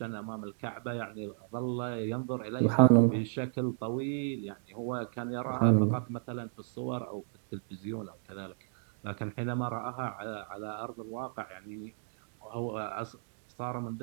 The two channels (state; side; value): silent; left; digital silence